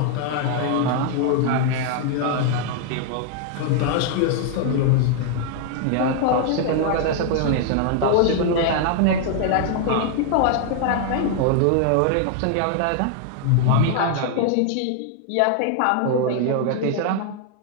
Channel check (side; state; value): both; different; correlation 0.00